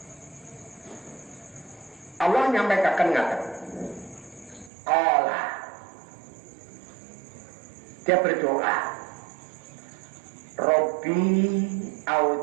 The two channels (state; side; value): drops out; left; at 4.7 s